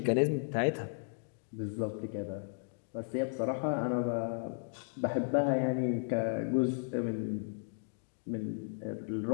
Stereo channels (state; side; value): silent; right; digital silence